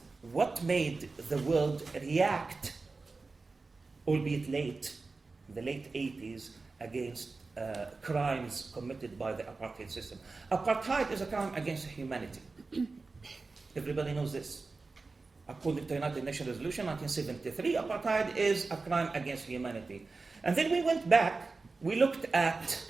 what made the world react, albeit late, in the late 80s, against crimes committed by the apartheid system. Apartheid is a crime against humanity. Everybody knows this. According to United Nations Resolution 1973, apartheid is a crime against humanity. And then we went back, we looked at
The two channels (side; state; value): left; quieter; 3.9 dB